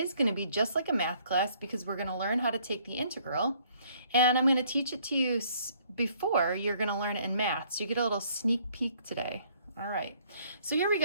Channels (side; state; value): both; inverted; correlation -0.62